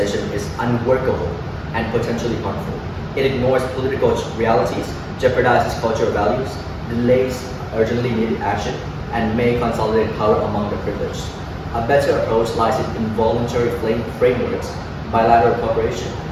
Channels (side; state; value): both; identical; correlation 1.00